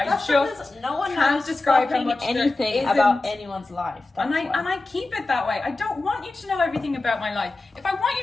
because no one can't knows describe how fucking much there anything isn't. about anyone's life. And I keep it that way. I don't want you to know everything about my life. If I want you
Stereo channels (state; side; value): quieter; right; 3.1 dB